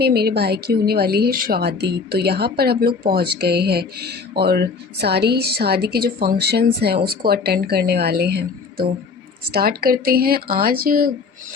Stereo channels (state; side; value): quieter; right; 4.8 dB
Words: मेरे भाई की होने वाली है शादी, तो यहाँ पर हम लोग पहुँच गए हैं और सारी शादी के जो फंक्शंस हैं उसको अटेंड करने वाले हैं। तो स्टार्ट करते हैं। आज